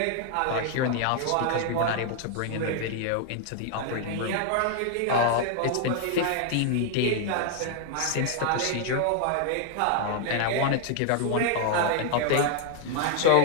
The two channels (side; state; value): both; different; correlation 0.00